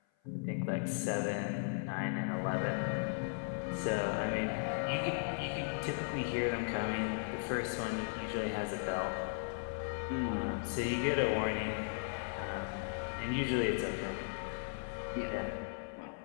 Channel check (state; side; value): silent; right; 53 dB below the other